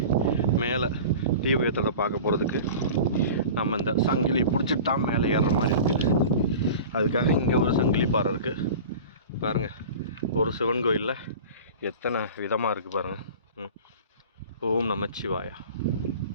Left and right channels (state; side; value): inverted; both; correlation -0.37